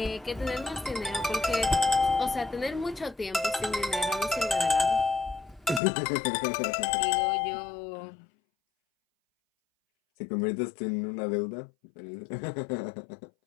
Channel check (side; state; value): right; drops out; at 5.8 s